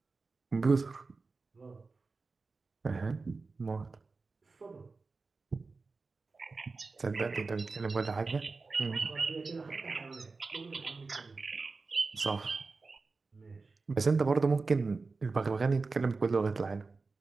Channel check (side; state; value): left; quieter; 4.0 dB